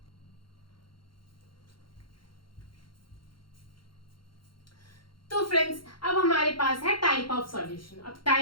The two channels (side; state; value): right; late; 0.73 ms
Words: तो फ्रेंड्स अब हमारे पास है टाइप ऑफ सॉल्यूशन। अब